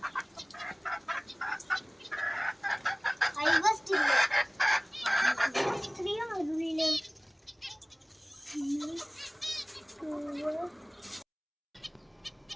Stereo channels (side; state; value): both; identical; correlation 1.00